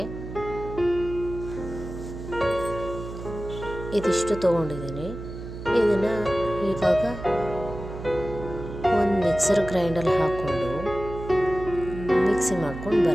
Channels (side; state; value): right; noise; hum, 10 dB below the sound